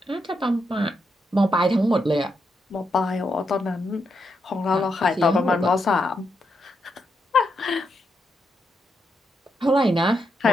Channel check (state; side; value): normal; both; correlation 0.82